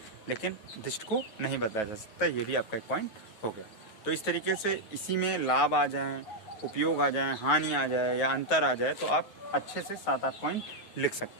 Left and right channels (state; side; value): late; right; 9.4 ms